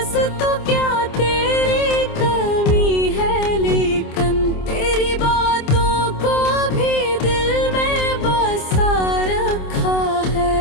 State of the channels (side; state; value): right; late; 27 ms